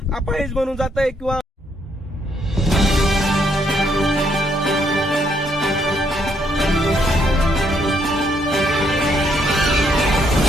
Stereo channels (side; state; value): both; normal; correlation 0.72